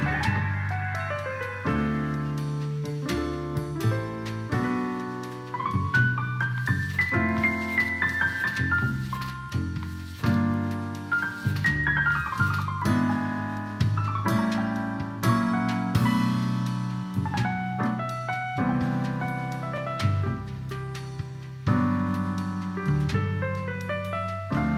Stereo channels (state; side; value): identical; both; correlation 1.00